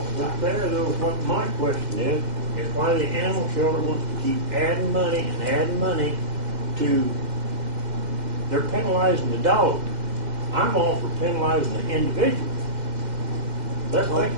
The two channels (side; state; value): left; late; 2.0 ms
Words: the But time. there, though, what my question is why the animal shelter wants to keep adding money to, they're penalizing the dog. I'm all for penalizing the individual. Let's make